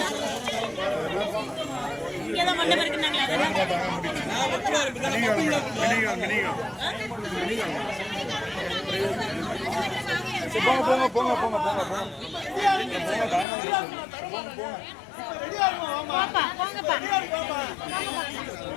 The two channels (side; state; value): right; drops out; at 13.5 s